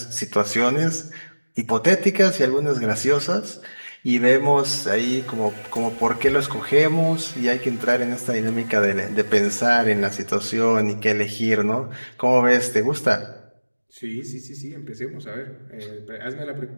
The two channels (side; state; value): both; inverted; correlation -1.00